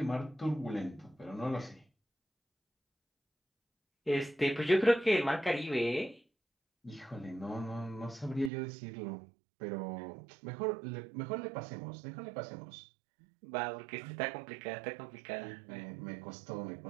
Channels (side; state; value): left; drops out; at 8.5 s